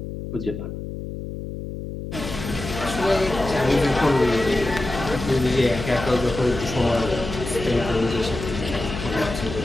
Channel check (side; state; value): left; noise; hum, 8 dB below the sound